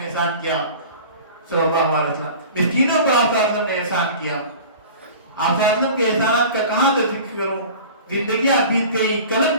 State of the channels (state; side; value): inverted; both; correlation -0.40